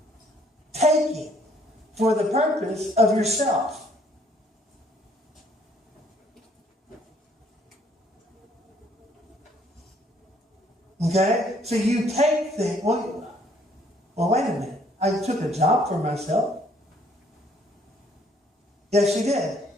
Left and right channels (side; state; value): both; normal; correlation 0.63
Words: taking for the purpose of yourself. Okay? So you take things. Well, wait a minute. I took a job for myself. Yes, you did.